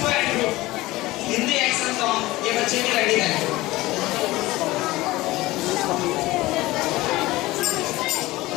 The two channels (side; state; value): right; quieter; 18.8 dB